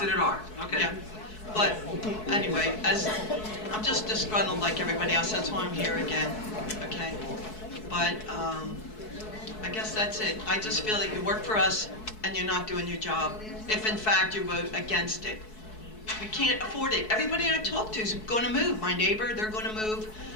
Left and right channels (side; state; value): right; late; 4.6 ms